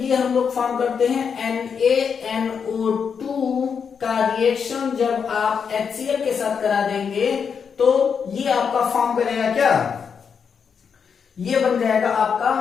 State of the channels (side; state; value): right; quieter; 6.5 dB